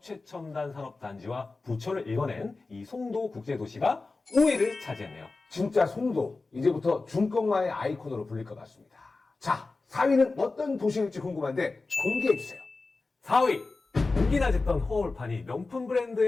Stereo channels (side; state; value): right; quieter; 3.7 dB